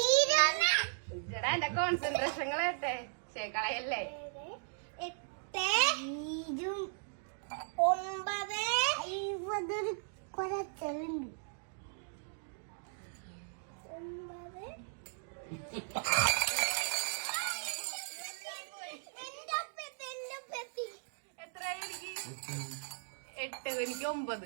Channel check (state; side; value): silent; left; digital silence